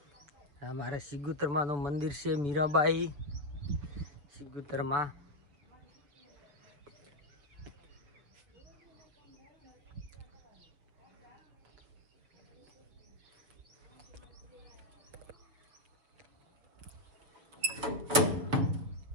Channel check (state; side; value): late; left; 6.7 ms